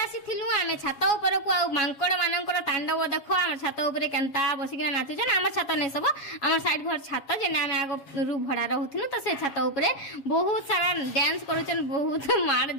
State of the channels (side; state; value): right; late; 7.2 ms